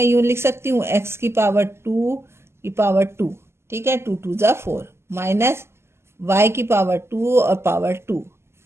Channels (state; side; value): late; left; 0.12 ms